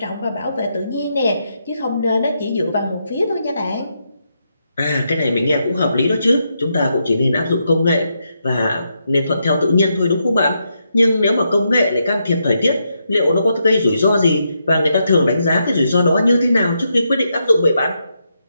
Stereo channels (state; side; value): inverted; both; correlation -0.81